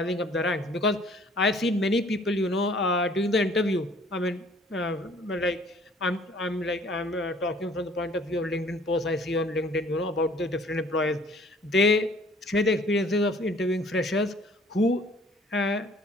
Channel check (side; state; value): both; normal; correlation 0.55